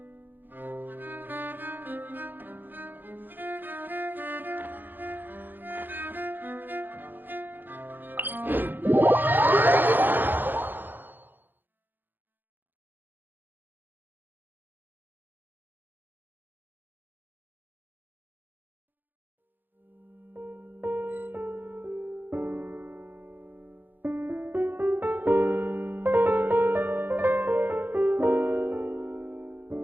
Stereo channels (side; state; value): left; late; 0.091 ms